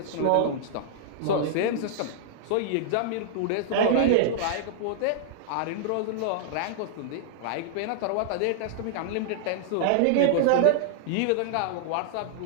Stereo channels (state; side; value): different; both; correlation -0.01